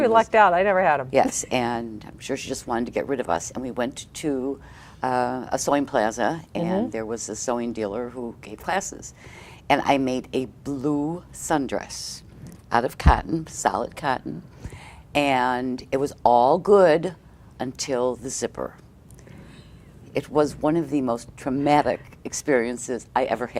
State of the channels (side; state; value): both; identical; correlation 1.00